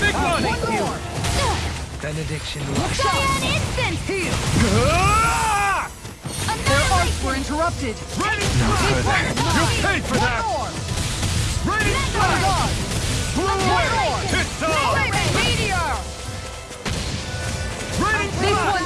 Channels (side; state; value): both; identical; correlation 1.00